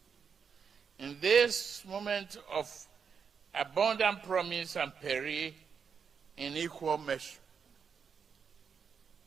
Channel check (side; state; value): left; quieter; 6.4 dB